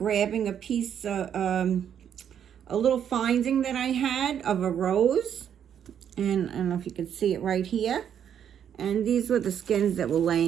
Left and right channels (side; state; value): left; quieter; 8.9 dB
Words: a piece, a little finding that I had of a rose. And I don't know if you can see it right here. And these were the skins that were